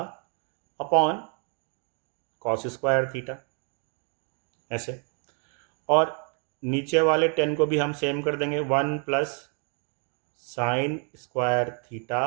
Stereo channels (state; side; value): quieter; left; 39.9 dB